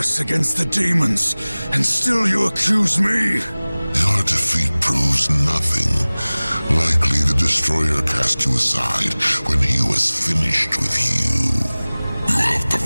against the demons, and still you accuse me? Your defeat proves nothing. Likely the Destroyer cast you aside when he was finished with you. You have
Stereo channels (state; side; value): inverted; both; correlation -0.99